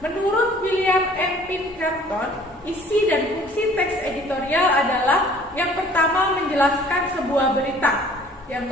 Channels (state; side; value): normal; both; correlation 0.53